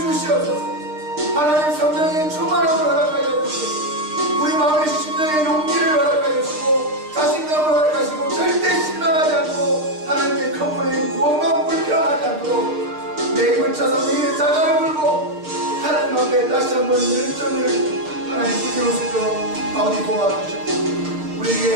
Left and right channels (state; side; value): late; left; 6.6 ms